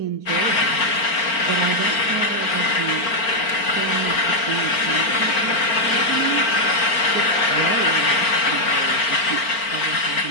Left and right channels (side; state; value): right; late; 4.4 ms